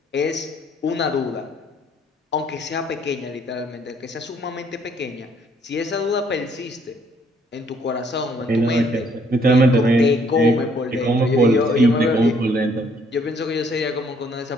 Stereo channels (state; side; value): normal; both; correlation 0.65